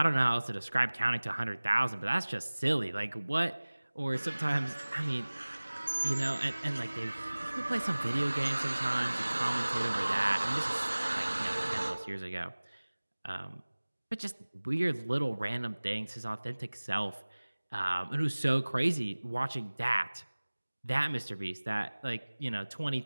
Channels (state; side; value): inverted; both; correlation -1.00